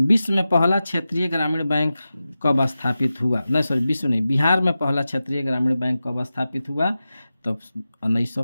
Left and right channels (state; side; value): inverted; both; correlation -0.93